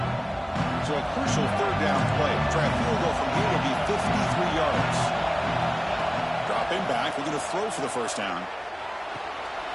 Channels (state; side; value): identical; both; correlation 1.00